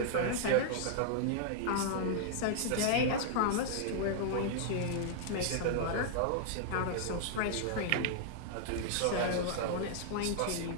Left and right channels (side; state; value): both; different; correlation -0.01